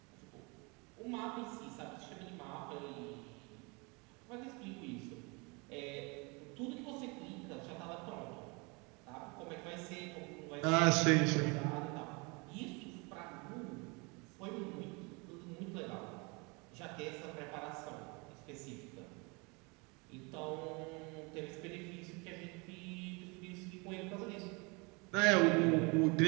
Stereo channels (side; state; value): left; quieter; 29.3 dB